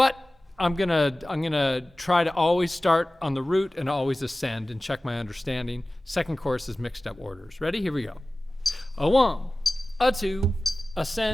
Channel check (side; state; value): both; normal; correlation 0.97